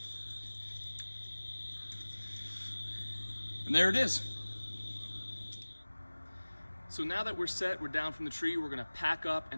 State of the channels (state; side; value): inverted; both; correlation -1.00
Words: And there it is. So now that we're set, we're down from the tree, we're gonna pack up